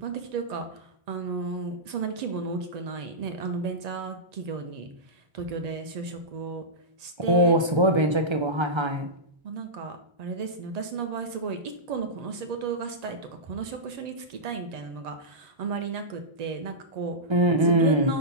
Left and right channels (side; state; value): left; late; 1.3 ms